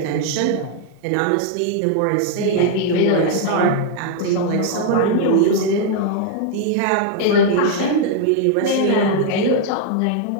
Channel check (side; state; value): both; different; correlation 0.00